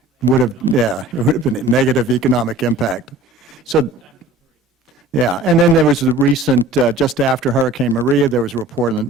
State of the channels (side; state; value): both; normal; correlation 0.44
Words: would have been a negative economic impact. So, yeah, and then there was the recent, just after Hurricane Maria, there was a report on